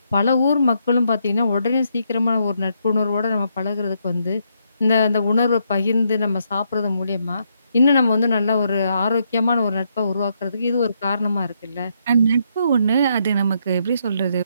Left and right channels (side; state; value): both; inverted; correlation -0.76